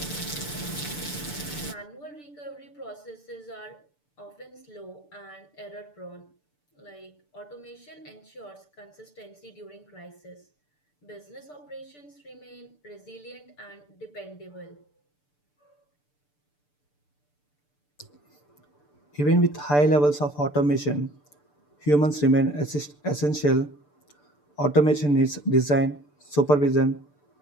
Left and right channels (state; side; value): late; right; 6.8 ms